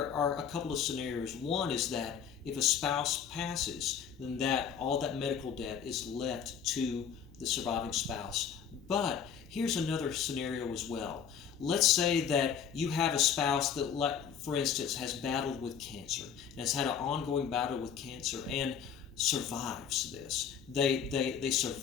are a couple of scenarios. One is that if a spouse passes, then all that medical debt is left to the surviving spouse. But here's another scenario as well. Let's say that you have a spouse that, for instance, has battled with cancer and has had an ongoing battle with cancer and survives this. They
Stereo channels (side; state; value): right; quieter; 7.8 dB